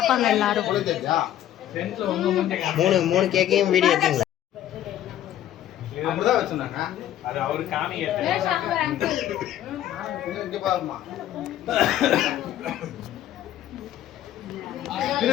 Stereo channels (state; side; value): quieter; right; 12.1 dB